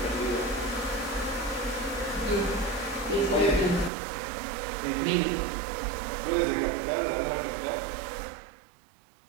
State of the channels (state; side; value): drops out; left; at 3.9 s